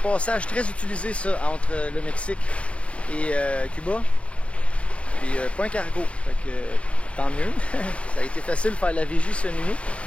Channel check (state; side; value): late; right; 0.062 ms